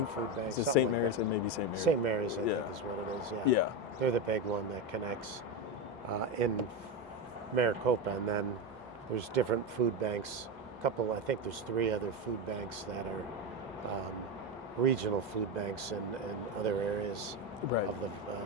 Food Bank. Is it St. Mary's? It may be St. Mary's. St. Mary's, I think, is what it is. Yeah. Yeah. They're the big one that connects in Maricopa, and then there's different food banks. I think there's 3 other food banks that are regional food banks in other areas of the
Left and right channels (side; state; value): both; normal; correlation 0.14